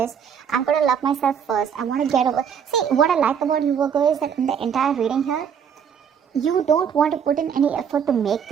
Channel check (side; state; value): left; quieter; 7.7 dB